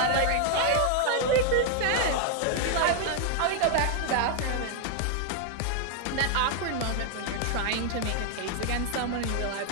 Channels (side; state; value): both; different; correlation 0.00